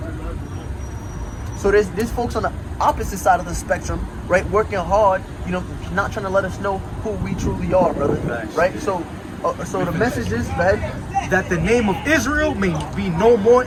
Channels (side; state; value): both; identical; correlation 1.00